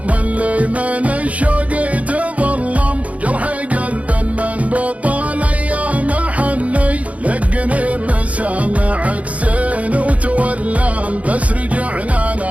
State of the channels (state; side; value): late; left; 0.067 ms